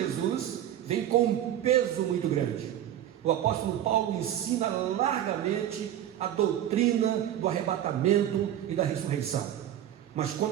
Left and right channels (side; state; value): left; quieter; 11.5 dB